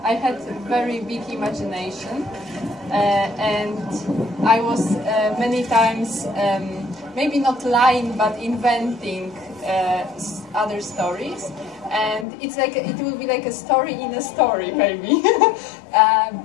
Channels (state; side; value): drops out; right; at 12.2 s